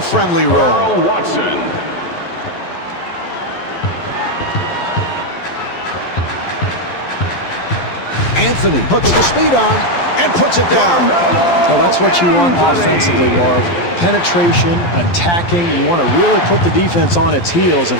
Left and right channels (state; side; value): late; right; 12 ms